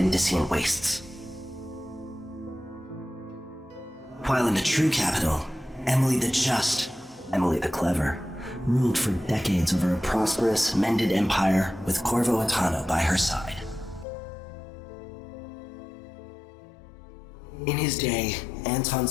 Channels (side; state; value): right; drops out; at 14.1 s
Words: wastes. While in the true capital, Emily the Just, Emily the Clever, ruled for decades over a prosperous, mended empire with Corvo Attano by her side. In his day, Anton